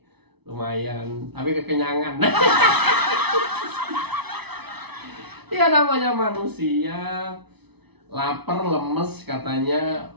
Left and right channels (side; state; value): left; late; 0.99 ms